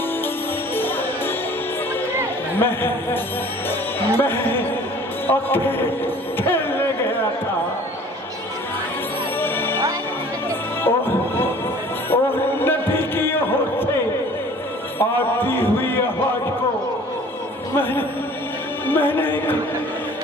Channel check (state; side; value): normal; both; correlation 0.49